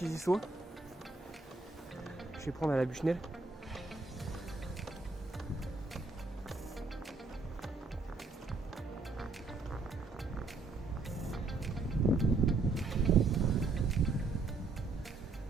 y soient. Je vais prendre à la bûchenelle.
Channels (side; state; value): left; quieter; 3.8 dB